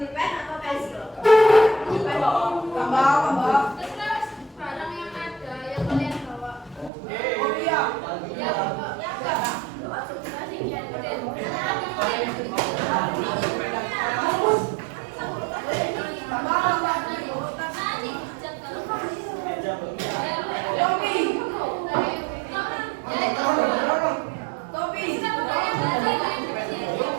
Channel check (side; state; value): left; drops out; at 6.9 s